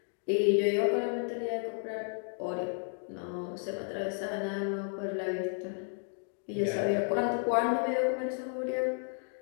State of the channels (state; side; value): silent; right; 56 dB below the other